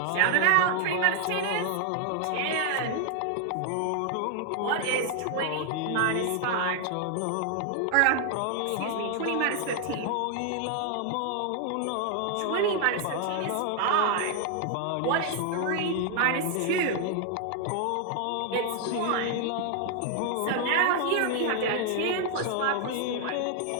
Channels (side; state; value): both; different; correlation 0.00